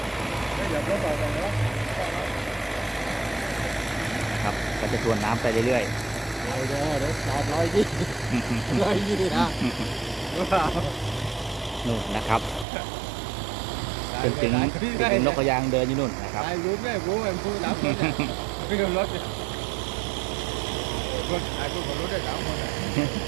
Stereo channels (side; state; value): left; drops out; at 12.7 s